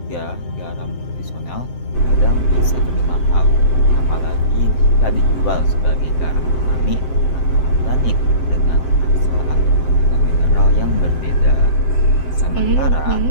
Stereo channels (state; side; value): late; right; 7.7 ms